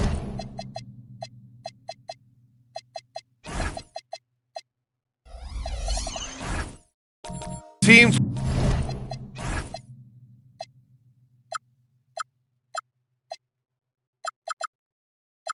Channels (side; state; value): both; identical; correlation 1.00